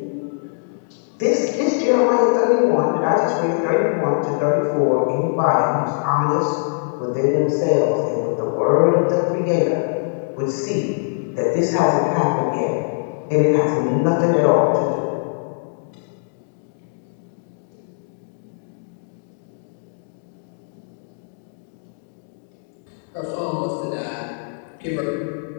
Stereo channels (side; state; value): right; silent; digital silence